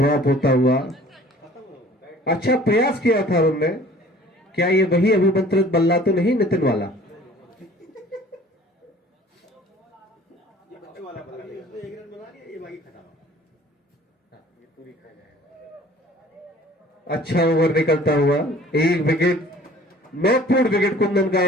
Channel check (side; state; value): both; normal; correlation 0.50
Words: होता हुआ। अच्छा प्रयास किया था उन्होंने। क्या ये वही अभिमंत्रित बल्ला तो नहीं नितिन वाला? अच्छा ओवर निकलता हुआ, 1 विकेट, महत्वपूर्ण विकेट कुंदन का